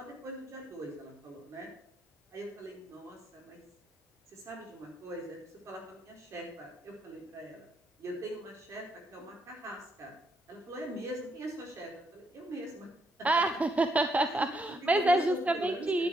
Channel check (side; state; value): both; normal; correlation 0.76